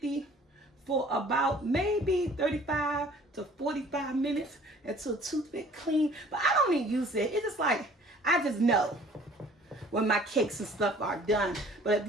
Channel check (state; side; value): normal; both; correlation 0.52